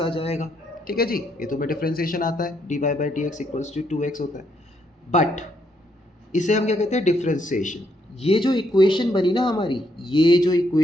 जाएगा। ठीक है जी, ये तुम्हें डिफरेंशिएशन आता है, dy by d x equals to 2x होता है। बट इसे हम क्या कहते हैं, डिफरेंशिएशन। ये जो इक्वेशन बनी ना हमारी, ये जो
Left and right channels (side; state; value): both; normal; correlation 0.74